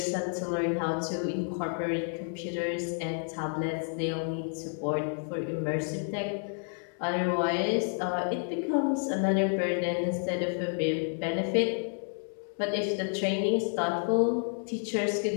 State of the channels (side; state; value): right; silent; 57 dB below the other